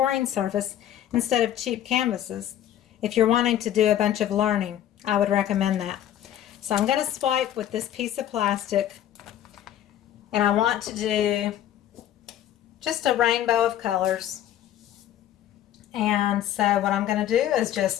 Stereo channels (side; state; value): right; quieter; 11.5 dB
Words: surface instead of cheap canvases. If you're wanting to do a bunch of learning, I would recommend that. So I'm going to swipe with this piece of plastic, and I want to do just a rainbow of colors. And so what I'm going to do is